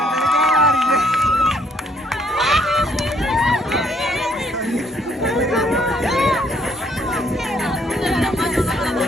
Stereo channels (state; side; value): normal; both; correlation 0.66